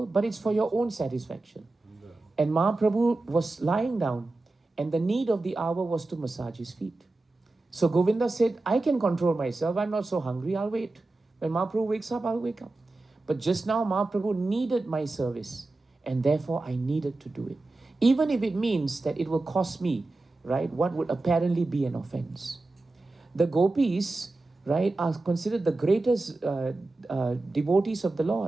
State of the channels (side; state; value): left; quieter; 3.1 dB